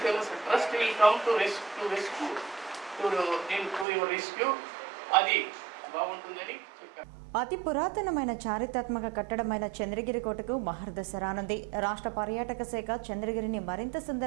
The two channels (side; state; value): left; drops out; at 3.9 s